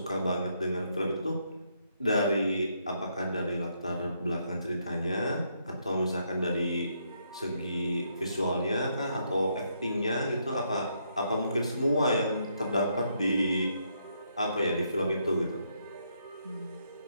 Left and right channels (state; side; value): inverted; both; correlation -0.75